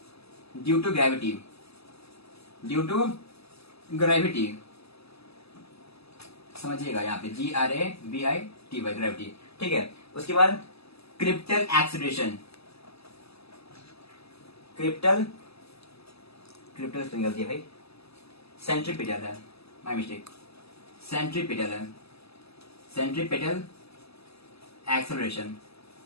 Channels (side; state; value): right; late; 0.78 ms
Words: due to gravity, due to gravity, समझिएगा यहाँ पे GRAVITY, ग्रेविटी, ठीक है। उसके बाद क्रिप्टल एक्सेलरेशन, क्रिप्टल गलती है भाई, सेंट्रीपिटल है, माय मिस्टेक, सेंट्रीपिटल है, सेंट्रीपिटल एक्सेलरेशन,